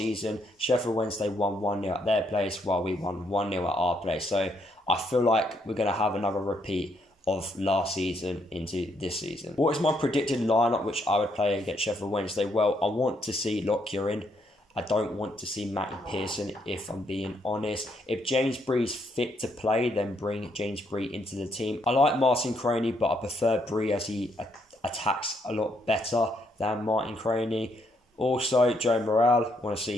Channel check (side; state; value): both; normal; correlation 0.74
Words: Sheffield Wednesday won 1-0 at their place while we won 1-0 at our place. So I feel like we're going to have another repeat of last season into this season. What is my predicted lineup which I would play against Sheffield Wednesday? Well, I want to see Lockyer in. I don't want to see Matty Pearson, if I'm being honest. If James Bree's fit to play, then bring James Bree into the team. I like Martin Croney, but I prefer Bree as he attacks a lot better than Martin Croney. Also, Joe Morrell, I want to